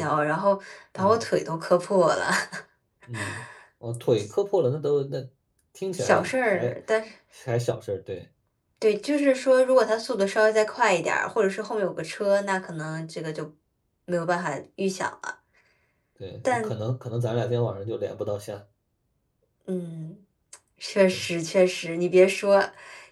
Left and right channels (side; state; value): both; identical; correlation 1.00